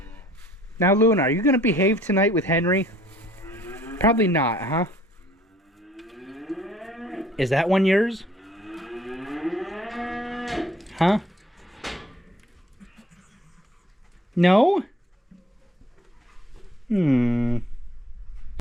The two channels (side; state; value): both; normal; correlation 0.58